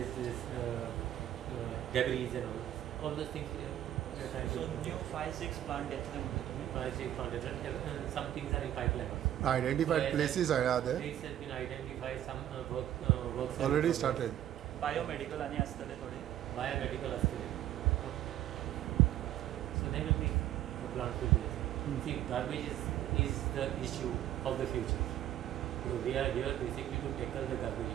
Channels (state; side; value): quieter; left; 12.1 dB